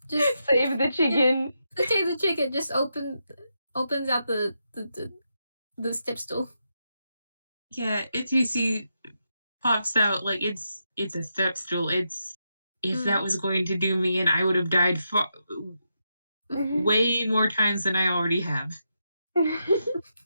save the chicken. Save the chicken. Just opens out the step stool. Yeah, TUC pops out like it's a step stool. If that was going to do me, and I would have died way more times than I already have. But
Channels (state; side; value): inverted; both; correlation -0.84